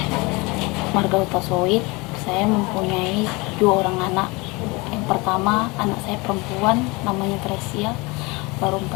Marga Utasoid. Saya mempunyai 2 orang anak. Yang pertama, anak saya perempuan, namanya Tresia, baru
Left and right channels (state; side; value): quieter; right; 25.5 dB